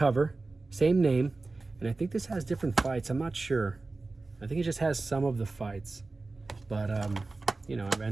same name, and I think this has different fights. I'm not sure. I think it just has some of the fights, but you know,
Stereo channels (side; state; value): left; quieter; 3.5 dB